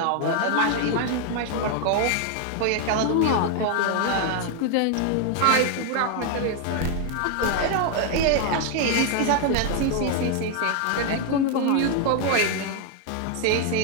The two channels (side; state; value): both; different; correlation 0.00